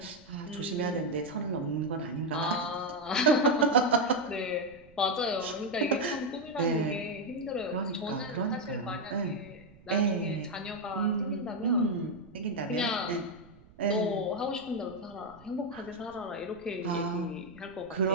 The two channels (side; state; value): right; noise; rumble, 24 dB below the sound